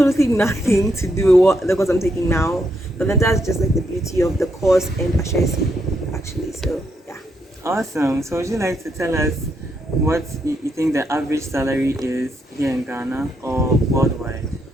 nothing to do with what the course I'm taking now. But then that's just like the beauty of the course and Ashesi, actually. So yeah. Awesome. So would you like to tell us what you think the average salary is here in Ghana or worldwide?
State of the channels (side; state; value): both; normal; correlation 0.78